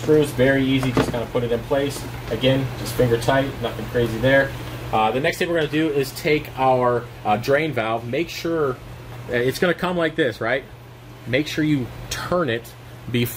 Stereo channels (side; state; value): both; identical; correlation 1.00